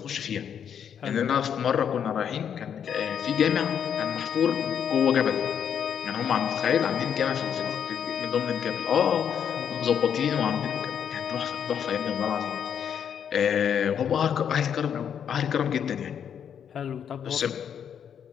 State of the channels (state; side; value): quieter; right; 8.3 dB